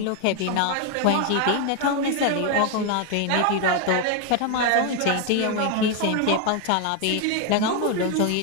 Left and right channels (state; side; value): different; both; correlation 0.01